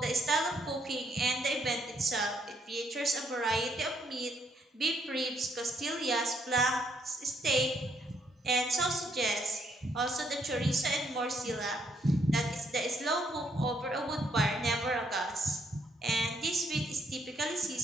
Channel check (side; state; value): both; normal; correlation 0.71